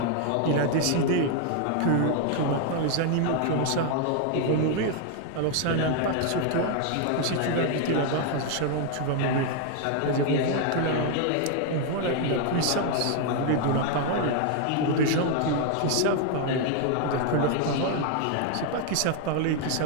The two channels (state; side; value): different; both; correlation 0.00